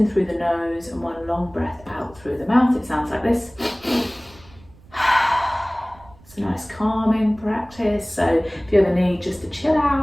through the nose and 1 long breath out through the mouth. It sounds like this. It's a nice calming practice, so if you ever need just to chill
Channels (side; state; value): right; noise; rumble, 25 dB below the sound